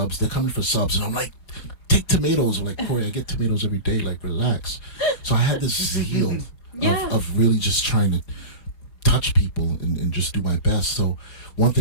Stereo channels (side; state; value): right; late; 4.7 ms